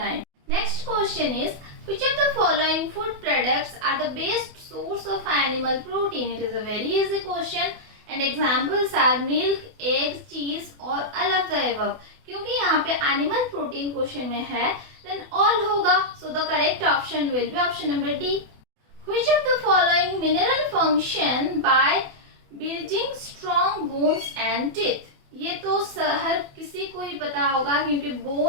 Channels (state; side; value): late; left; 28 ms